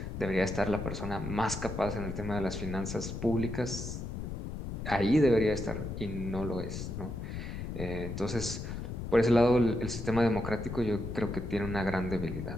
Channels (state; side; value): noise; left; rumble, 6 dB below the sound